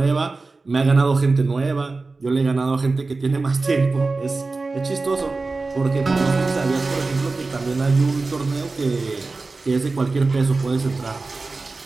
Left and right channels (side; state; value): left; quieter; 3.7 dB